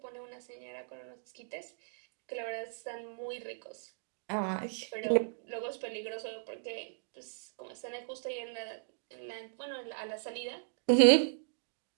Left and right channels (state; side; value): silent; left; digital silence